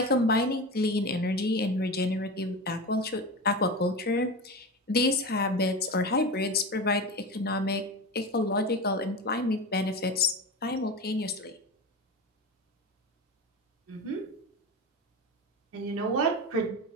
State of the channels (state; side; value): normal; both; correlation 0.25